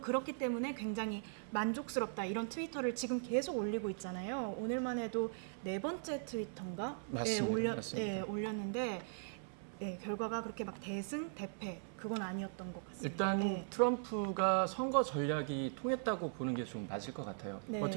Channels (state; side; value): silent; left; 51 dB below the other